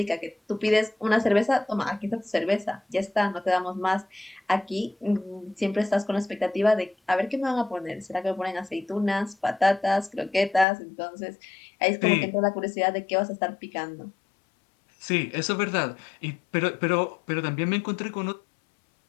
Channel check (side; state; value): right; drops out; at 10.7 s